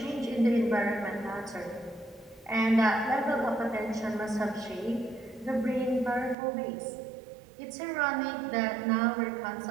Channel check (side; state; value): left; drops out; at 6.4 s